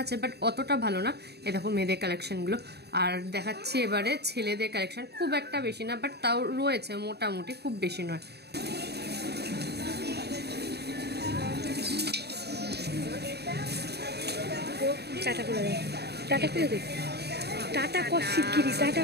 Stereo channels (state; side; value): late; left; 0.48 ms